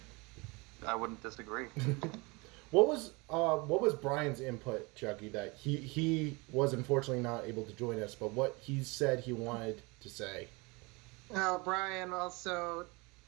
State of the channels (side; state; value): left; quieter; 26.6 dB